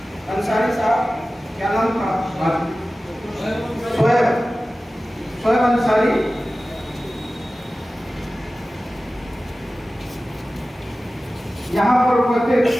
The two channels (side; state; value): both; normal; correlation 0.96